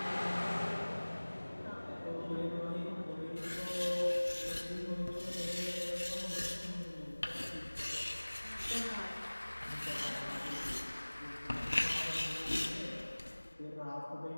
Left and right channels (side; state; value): both; inverted; correlation -1.00